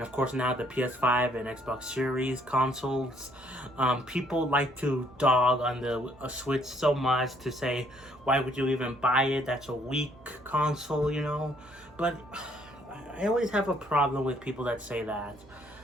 course now the PS5 and Xbox Series consoles. People like to dog on the Switch so much to say, why would you even buy it? That's a weak console, you know? But I always have a problem with people that say that.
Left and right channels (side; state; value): both; normal; correlation 0.66